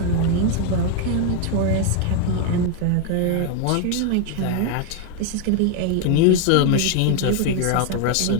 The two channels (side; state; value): both; different; correlation 0.01